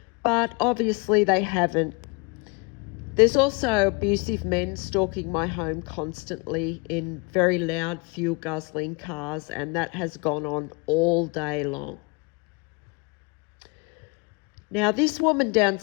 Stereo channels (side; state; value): right; quieter; 30.5 dB